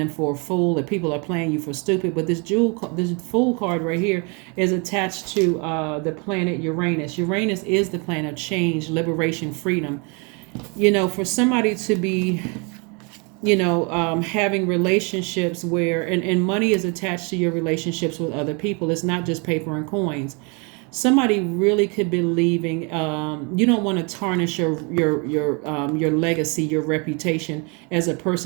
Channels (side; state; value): left; quieter; 32.7 dB